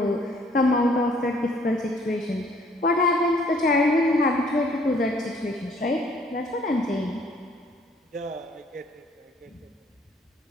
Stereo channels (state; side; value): normal; both; correlation 0.61